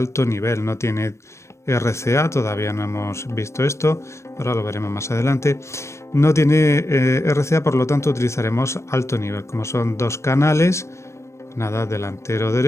nivel, no tiene RCA, todavía no hemos visto esto, ahora lo veremos más adelante. No tiene RCA, por lo tanto utilizaremos alto nivel, como son 2 canales, nada, delantero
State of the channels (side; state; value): right; late; 0.13 ms